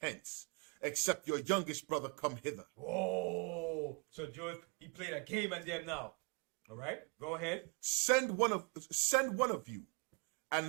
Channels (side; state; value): left; quieter; 34.5 dB